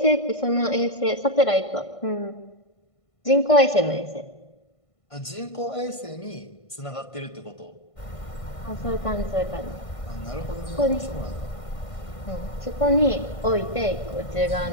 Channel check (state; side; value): late; right; 1.5 ms